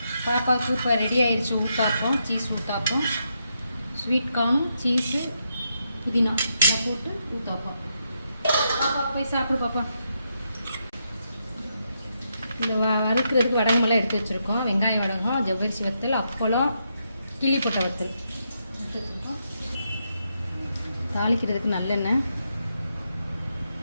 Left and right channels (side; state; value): both; inverted; correlation -0.81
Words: பாப்பாவுக்கு இப்போ ரெடி ஆயிடுச்சு ஊத்தாப்பம், சீஸ் ஊத்தாப்பம், ஸ்வீட் கார்னும் சீஸு புதினா இதை போட்டு ஊத்தாப்பம். பாப்பா போய் சாப்பிடு பாப்பா. இந்த வறுக்கிறதுக்கு வடகமெல்லாம் எடுத்து வச்சுருக்கோம். வெங்காயம் வடகம், ஜவ்வரிசி வத்தல், அப்பளம், கிள்ளி போட்ட வத்தல் எடுத்து வச்சுருக்கோம். தாளிக்கிறதுக்கு நல்லெண்ணெய்,